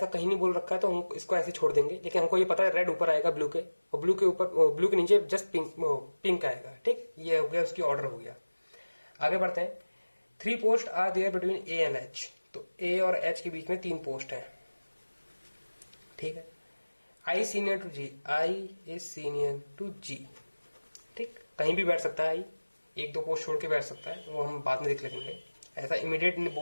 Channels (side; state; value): both; inverted; correlation -1.00